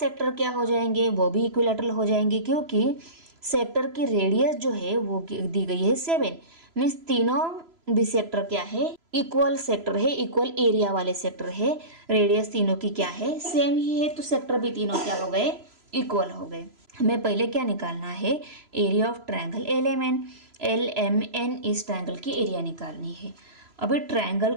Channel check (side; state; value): left; late; 3.0 ms